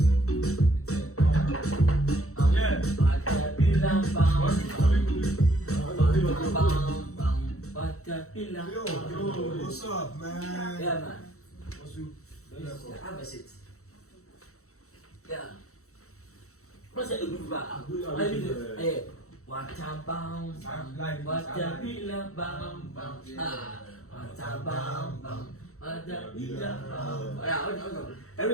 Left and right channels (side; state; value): right; late; 0.64 ms